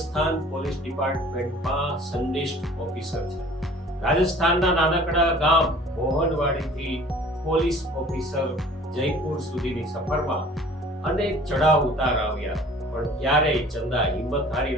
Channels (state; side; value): normal; both; correlation 0.48